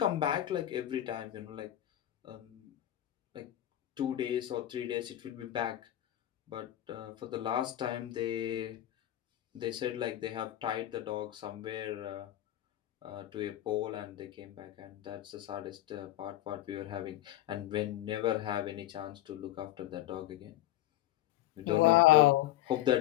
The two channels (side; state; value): right; quieter; 13.9 dB